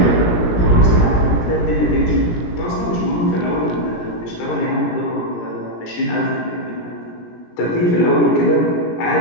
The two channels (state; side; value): late; right; 17 ms